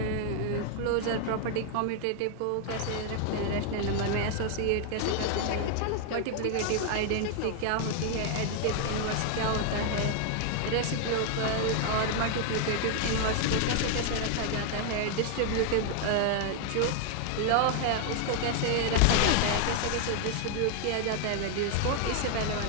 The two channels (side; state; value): both; different; correlation 0.00